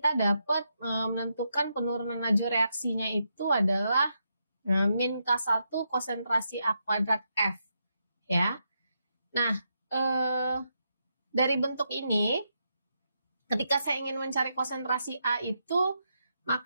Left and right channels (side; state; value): both; inverted; correlation -0.82